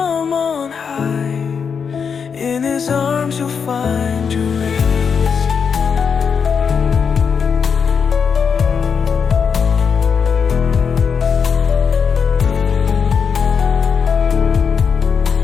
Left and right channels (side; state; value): right; quieter; 6.4 dB